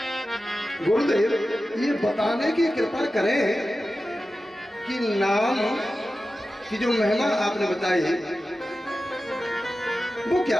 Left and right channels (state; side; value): normal; both; correlation 0.94